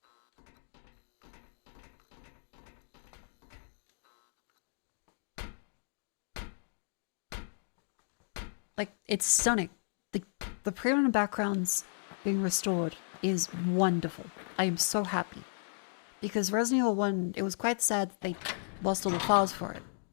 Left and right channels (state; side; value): silent; right; digital silence